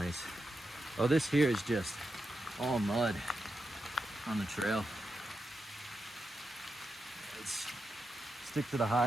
Oh, this here is just all mud on the trail. Let's stick to the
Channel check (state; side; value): normal; both; correlation 0.87